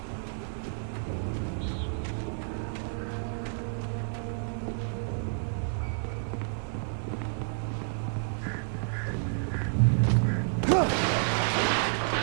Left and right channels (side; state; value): left; silent; digital silence